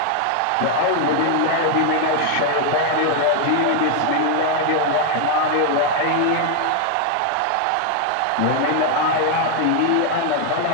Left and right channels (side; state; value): both; different; correlation 0.00